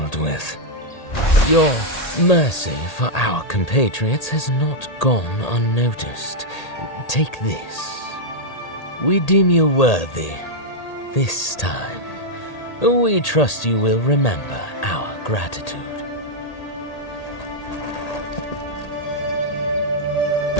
with. Your Mercy for our compatriots has not gone unnoticed. Take this. We deem you worthy. This time, we trust you will remember our gratitude.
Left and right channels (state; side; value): late; right; 1.8 ms